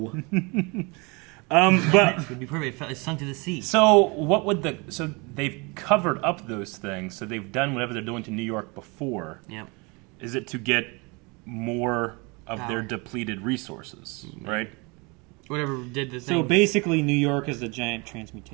no? But it would be perfect. It sunk to the sea. So what would so they've covered up those things. So they've done whatever they're doing to New York before. Yep. Is it to get more of their depleted resources, right? Whatever did the thing. So basically, New York is the giant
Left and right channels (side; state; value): left; quieter; 28.7 dB